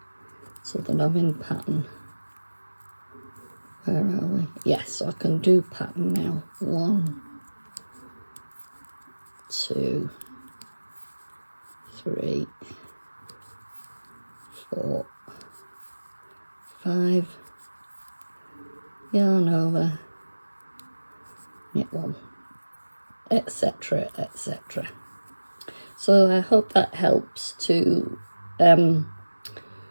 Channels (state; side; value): inverted; both; correlation -1.00